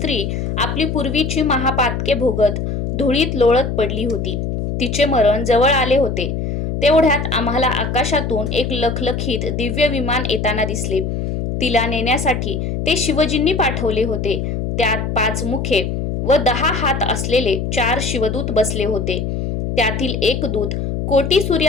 आपली पूर्वीची महापातके भोगत धुळीत लोळत पडली होती. तिचे मरण जवळ आले होते. तेवढ्यात आम्हाला आकाशातून एक लखलखीत दिव्य विमान येताना दिसले. तिला नेण्यासाठी ते शिवजींनी पाठवले होते. त्यात 5 मुखे व 10 हात असलेले 4 शिवदूत बसले होते. त्यातील एक दूत कोटी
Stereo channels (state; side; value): noise; left; hum, 3 dB below the sound